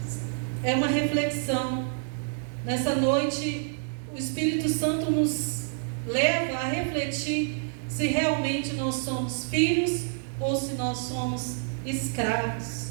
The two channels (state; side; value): silent; left; 59 dB below the other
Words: É uma reflexão. Nessa noite, o Espírito Santo nos leva a refletir se realmente nós somos filhos ou se nós somos escravos.